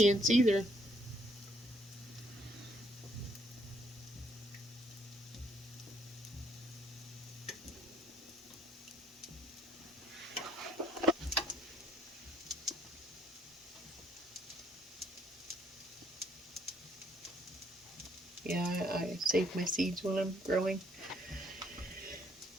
either. Yeah, I save my seeds when I'm growing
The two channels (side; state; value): both; normal; correlation 0.67